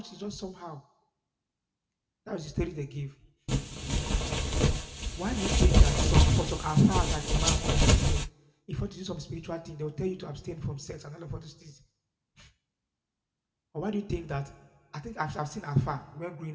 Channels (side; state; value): both; identical; correlation 1.00